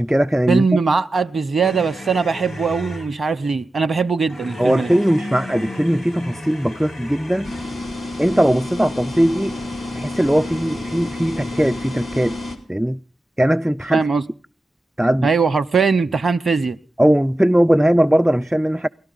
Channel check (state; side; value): normal; both; correlation 0.94